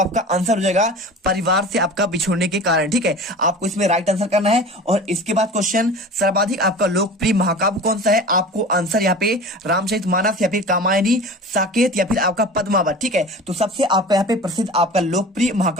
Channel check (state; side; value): normal; both; correlation 0.37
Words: आंसर हो जाएगा परिवार से आपका बिछुड़ने के कारण। ठीक है, आपको इसमें राइट आंसर करना है। और इसके बाद क्वेश्चन, सर्वाधिक आपका लोकप्रिय महाकाव्य कौन सा है, आपको आंसर यहाँ पे रामचरितमानस या फिर कामायनी, साकेत या फिर आपका पद्मावत। ठीक है, तो सबसे आपका यहाँ पे प्रसिद्ध आपका लोकप्रिय